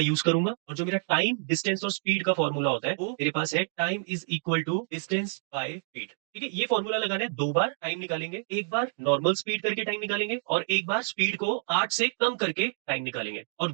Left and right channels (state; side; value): silent; left; 59 dB below the other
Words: यूज करूंगा और जो मेरा टाइम, डिस्टेंस और स्पीड का फॉर्मूला होता है वो मेरे पास है time is equal to distance by speed. ठीक है, ये फॉर्मूला लगाना है। 2 बार टाइम निकालेंगे, एक बार नॉर्मल स्पीड करके टाइम निकालेंगे और एक बार स्पीड को 8 से कम करके टाइम निकालेंगे और